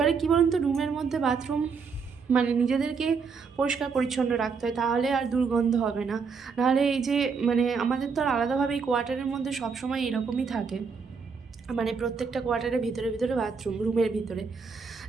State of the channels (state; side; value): quieter; left; 5.4 dB